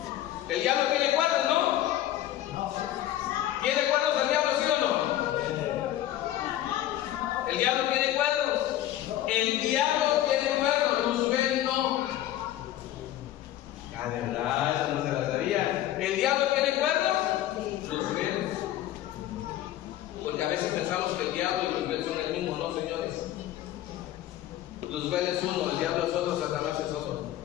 El diablo tiene cuernos, ¿no? ¿Tiene cuernos el diablo, sí o no? El diablo tiene cuernos. El diablo tiene cuernos. Luzbel no. Ah, de verdad, eso no se la sabía. ¿El diablo tiene cuernos? Luzbel. Porque a veces pensamos que el diablo y Luzbel son el mismo. No, señores. Luzbel es uno, el diablo es otro, Satanás es otro.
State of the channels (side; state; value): right; quieter; 13.2 dB